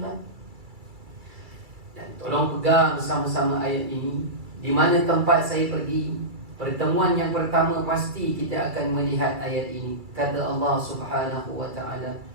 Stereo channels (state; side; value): late; left; 2.3 ms